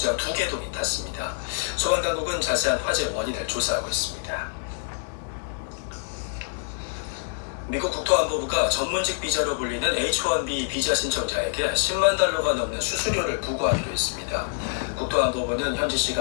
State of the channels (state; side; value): silent; right; 61 dB below the other